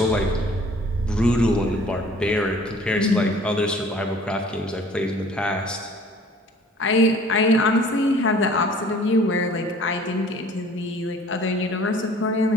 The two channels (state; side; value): normal; both; correlation 0.51